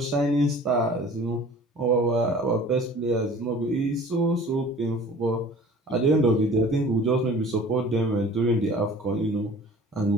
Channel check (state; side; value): normal; both; correlation 0.46